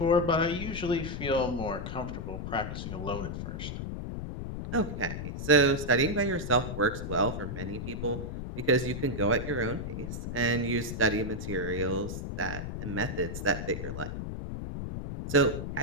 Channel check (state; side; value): noise; left; rumble, 5 dB below the sound